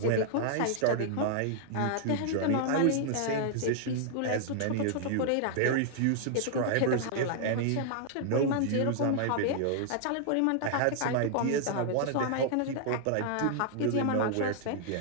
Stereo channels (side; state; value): both; different; correlation -0.01